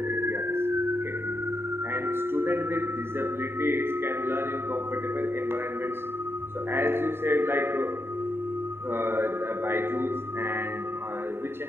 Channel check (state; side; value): late; left; 0.11 ms